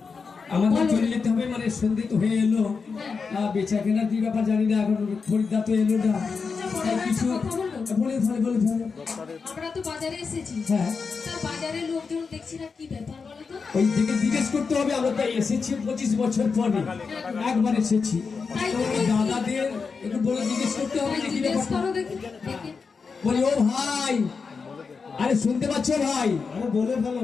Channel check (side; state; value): right; quieter; 5.1 dB